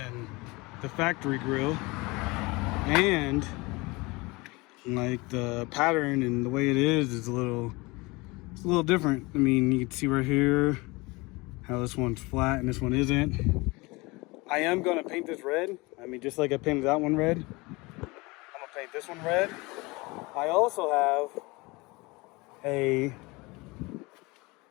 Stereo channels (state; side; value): quieter; right; 24.3 dB